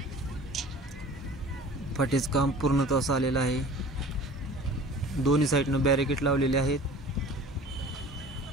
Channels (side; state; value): both; normal; correlation 0.44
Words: फाटीचं काम पूर्णतः आलेलं आहे। दोन्ही साइडनं बॅरिकेड लावलेले आहेत।